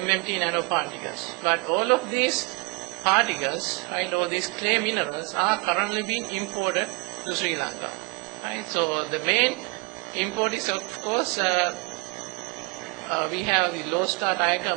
nanoparticles. But all of these particles, or these clay minerals, are currently being imported to Sri Lanka. Right? So the main import is, of course, we have the Low Star Tire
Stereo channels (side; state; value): left; quieter; 28.6 dB